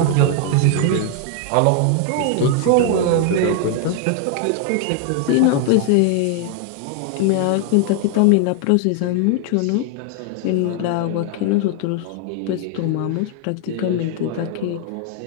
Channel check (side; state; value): both; different; correlation 0.00